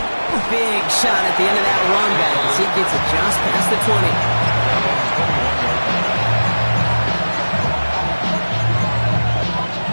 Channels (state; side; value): inverted; both; correlation -1.00